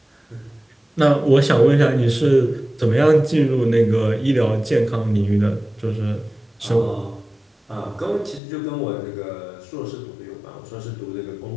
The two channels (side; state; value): right; drops out; at 8.4 s